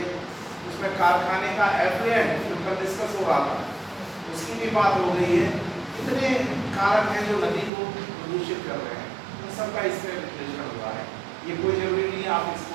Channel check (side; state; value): left; drops out; at 7.7 s